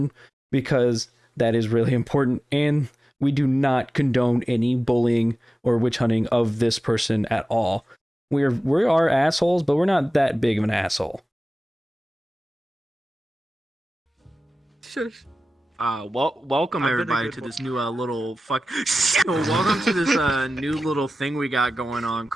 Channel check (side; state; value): both; normal; correlation 0.95